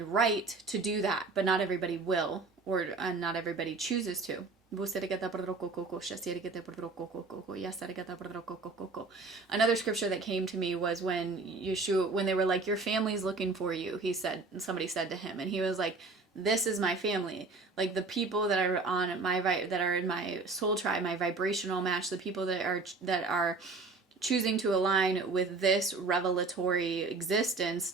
right to do that, but not everybody will, or not everybody chooses to. Another scripture that came to me was when Yeshua, when they were like, your family's looking for you, somebody said to him, and he was like, this is my family. Like the people that are on that are in my soul tribe, my vibrational match, the people that are choosing to align with this revelatory existence,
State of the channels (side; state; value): left; quieter; 3.8 dB